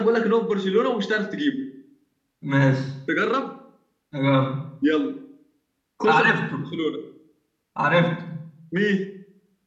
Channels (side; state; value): both; identical; correlation 1.00